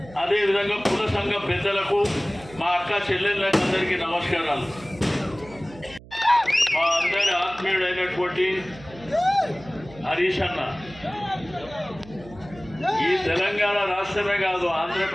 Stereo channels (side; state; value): right; noise; hum, 20 dB below the sound